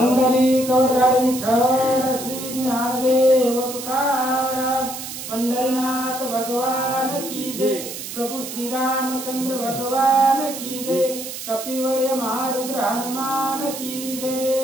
कवरधारी विठ्ठल श्री ज्ञानदेव तुकाराम पंढरीनाथ भगवान की जय। प्रभु श्री रामचंद्र भगवान की जय। कपिवर्य महारुद्र हनुमान की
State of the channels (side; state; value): right; noise; hiss, 9 dB below the sound